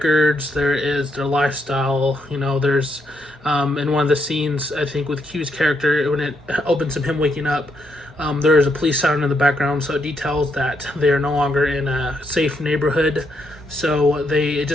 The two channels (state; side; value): normal; both; correlation 0.77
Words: There is their lifestyle. There's in one of the scenes, I think, with Q's character, when it opens him waking up, there is a police siren in the background, so it details that they are no longer in a safe neighborhood. So it